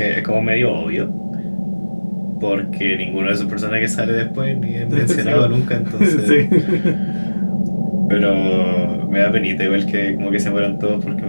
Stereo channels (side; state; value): both; inverted; correlation -1.00